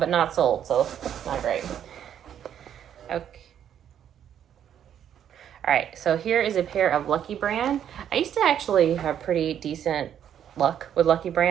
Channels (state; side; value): quieter; left; 9.6 dB